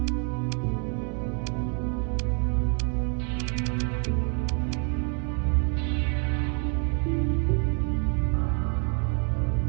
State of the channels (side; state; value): left; quieter; 39.6 dB